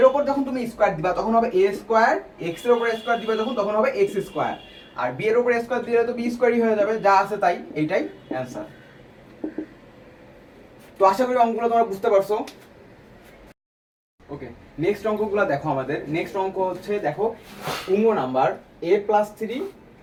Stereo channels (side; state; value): both; identical; correlation 1.00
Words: উপর যখন তুমি স্কোয়ার দিবা তখন হবে এ স্কোয়ার, এক্স এর উপরে স্কোয়ার দিবা তখন হবে এক্স স্কোয়ার, আর বি এর উপরে স্কোয়ার দিলে তো বি স্কোয়ারই হয়ে যাবে, যা আছে তাই, এইটাই অ্যান্সার। তো আশা করি অঙ্কগুলো তোমরা বুঝতে পারছো। ওকে, নেক্সট অঙ্কগুলো দেখো। আমাদের নেক্সট অঙ্ক হচ্ছে দেখো উঙ্গ number a plus three